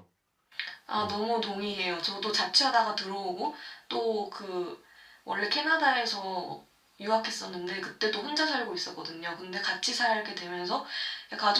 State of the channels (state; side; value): identical; both; correlation 1.00